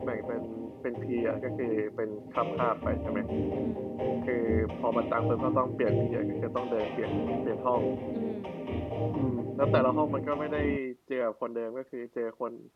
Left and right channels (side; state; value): both; identical; correlation 1.00